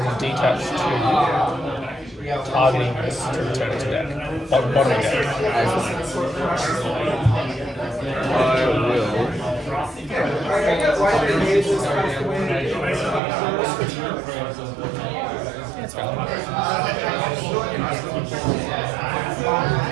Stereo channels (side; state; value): left; drops out; at 13.2 s